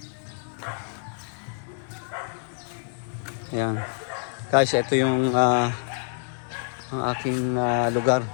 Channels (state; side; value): silent; right; digital silence